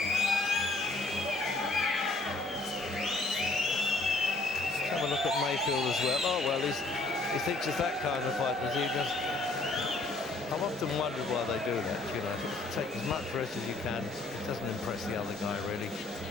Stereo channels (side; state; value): right; quieter; 3.1 dB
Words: Have a look at Mayfield as well. Oh, well, he thinks it's that kind of fight, does he? I've often wondered why they do that, you know. Take as much risk as you can. It doesn't impress the other guy, really.